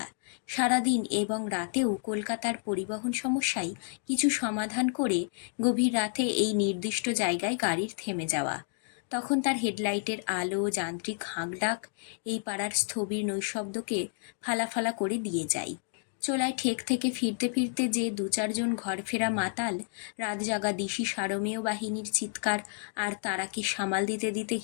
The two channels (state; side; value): silent; right; 58 dB below the other